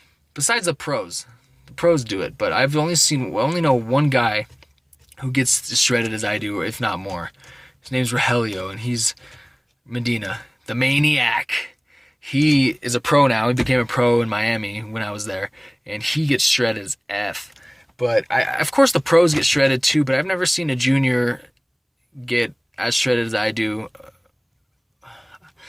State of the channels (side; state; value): both; identical; correlation 1.00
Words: besides the pros. The pros do it, but I only know one guy who gets as shredded as I do, if not more. His name's Rogelio, and he's Medina, the maniac. He is a pro now. He became a pro in Miami when I was there, and he gets shredded as F. But of course the pros get shredded too, but I've never seen a junior get as shredded as I do. I've